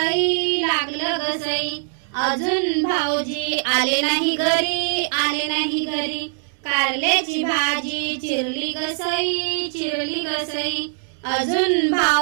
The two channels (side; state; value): left; silent; digital silence